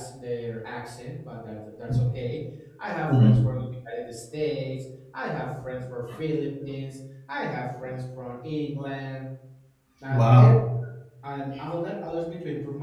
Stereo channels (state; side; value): identical; both; correlation 1.00